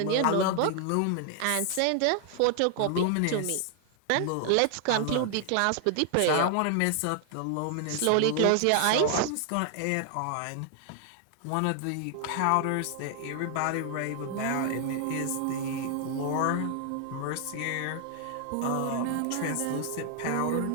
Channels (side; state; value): both; different; correlation 0.00